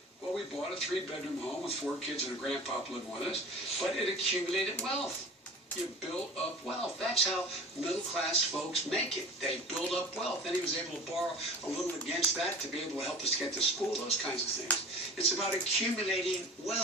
Well, we bought a 3-bedroom home with 4 kids and a grandpa living with us, but it accumulated wealth. You build up wealth. That's how middle-class folks make it. They build up wealth. Then he was able to borrow a little against that to be able to help us get to school, those kinds of things. It's about accumulating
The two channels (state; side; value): normal; both; correlation 0.39